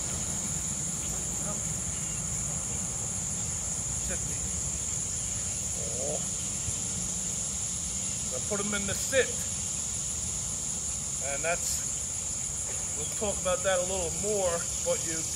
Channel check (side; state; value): both; identical; correlation 1.00